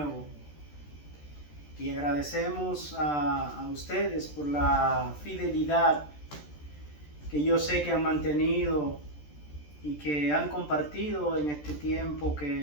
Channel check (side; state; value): right; late; 13 ms